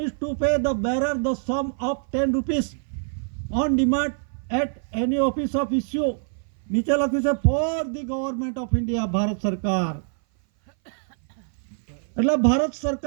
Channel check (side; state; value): left; silent; 58 dB below the other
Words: to pay the bearer the sum of 10 rupees on demand at any office of issue. નીચે લખ્યું છે for the government of India, Bharat સરકાર. એટલે ભારત